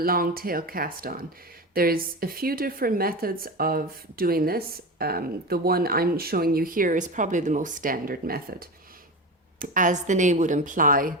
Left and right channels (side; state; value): both; normal; correlation 0.24